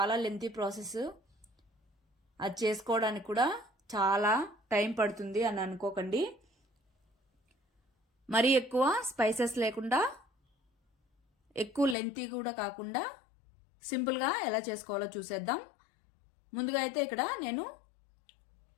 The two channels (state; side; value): drops out; right; at 12.0 s